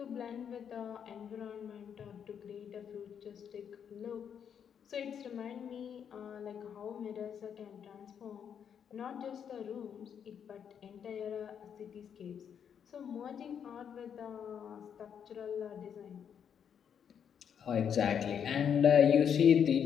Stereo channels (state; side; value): quieter; right; 8.0 dB